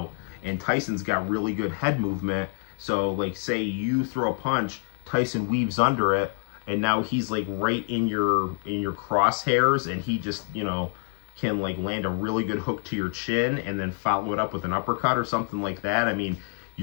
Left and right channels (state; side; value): silent; right; digital silence